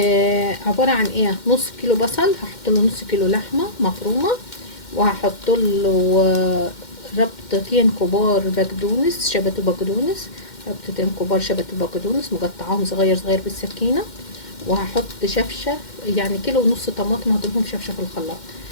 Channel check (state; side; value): late; right; 2.1 ms